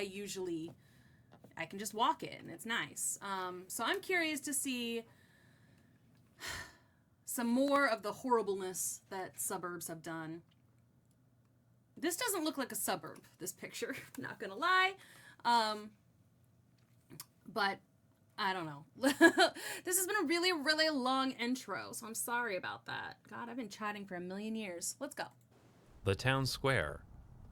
can just walk it and it's nice. So I'm curious to see some more of the horribleness that suburbs have done. This doesn't look like a suburb, this picture, not gonna lie. But I don't know. This has been a really, really long intro, so I'm sorry about that. God, I've been chatting for a million years. Let's go. The town square.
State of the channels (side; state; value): both; identical; correlation 1.00